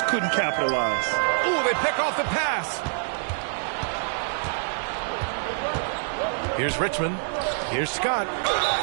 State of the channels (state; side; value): silent; left; digital silence